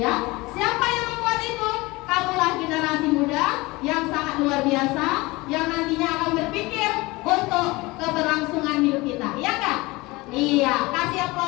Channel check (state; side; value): quieter; right; 22.3 dB